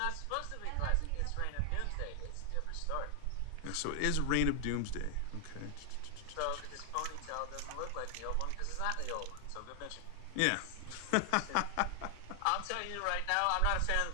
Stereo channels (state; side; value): different; both; correlation 0.00